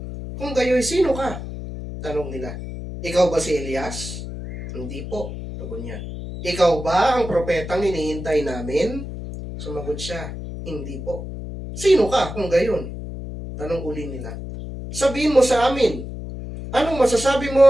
Kung gayo'y sino ka? Tanong nila. Ikaw ba si Elias? Hindi po. Tugon niya. Ikaw ba ang propetang hinihintay namin? Sumagot siya. Hindi po. Sino ka kung gayon? Tanong uli nila. Sabihin mo sa amin. Anong masasabi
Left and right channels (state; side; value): noise; left; hum, 8 dB below the sound